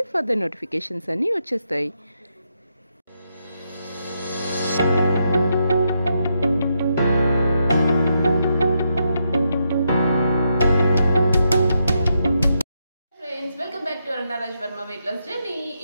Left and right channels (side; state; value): both; inverted; correlation -0.81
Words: ఫర్దర్ నోటిఫికేషన్స్ అన్నీ వచ్చేస్తాయి. Welcome back to Arunraj Varma weight loss journey.